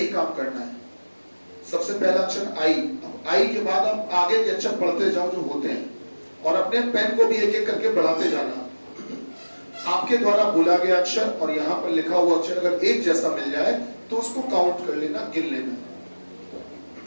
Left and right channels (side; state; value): both; inverted; correlation -1.00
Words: काम करना है। सबसे पहला अक्षर आई, अब आई के बाद आप आगे के अक्षर पढ़ते जाओ जो होते हैं और अपने पेन को भी एक एक करके बढ़ाते जाना। आपके द्वारा बोला गया अक्षर और यहाँ पर लिखा हुआ अक्षर अगर एक जैसा मिल जाए तो उसको काउंट कर लेना, गिन लेना।